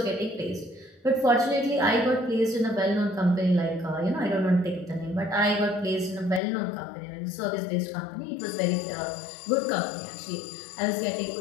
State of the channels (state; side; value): drops out; right; at 6.4 s